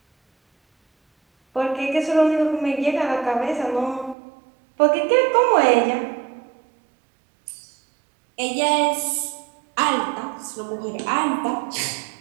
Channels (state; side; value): drops out; left; at 4.2 s